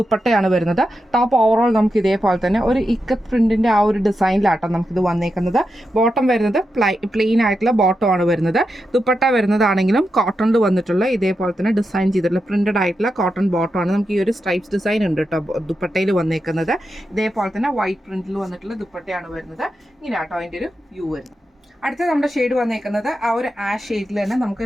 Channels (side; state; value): both; normal; correlation 0.88